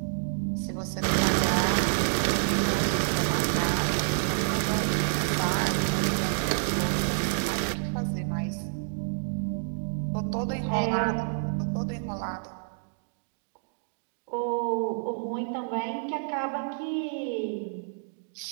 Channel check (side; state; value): left; silent; digital silence